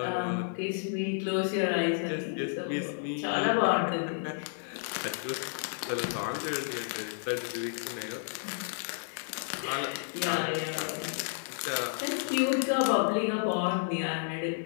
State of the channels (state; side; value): silent; right; digital silence